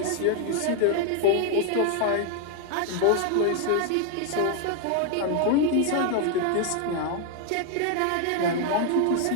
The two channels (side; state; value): both; different; correlation 0.00